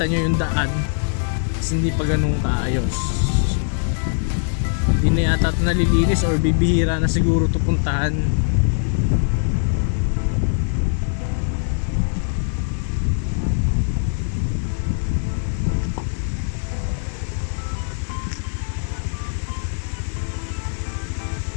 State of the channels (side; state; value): right; silent; digital silence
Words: nyo yung daan. Kasi hindi pa ganun kaayos. Hindi na yata ito nalilinis or bibihira na siguro ito puntahan.